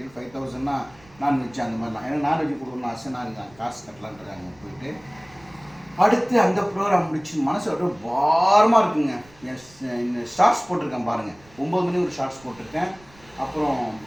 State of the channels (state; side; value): noise; right; rumble, 26 dB below the sound